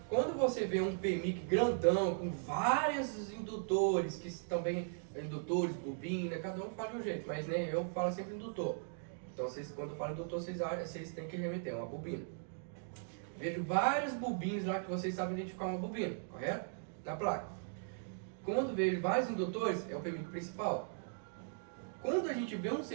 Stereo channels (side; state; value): left; silent; digital silence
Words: Quando você vê um PMIC grandão, com vários indutores, que também, indutores, bobina, cada um fala de um jeito, mas né, eu falo sempre indutor. Então quando eu falo indutor, vocês têm que remeter uma bobina. Vejo vários bobinos lá que vocês sabem identificar uma bobina, correto? Na placa. Quando vejo vários indutores, é o PMIC principal. Quando a gente vê um